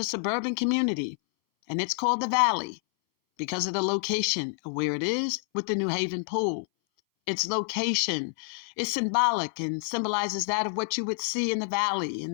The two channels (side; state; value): right; silent; 59 dB below the other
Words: suburban community, and it's called the Valley because of the location of where it is with the New Haven pool. Its location is symbolic and symbolizes that of what you would see in the Valley in